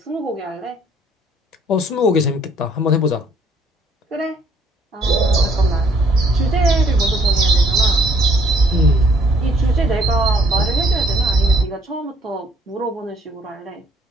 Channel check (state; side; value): normal; both; correlation 0.62